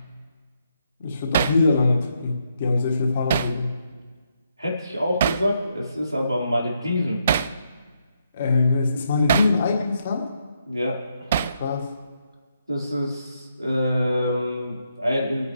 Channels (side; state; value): both; inverted; correlation -0.78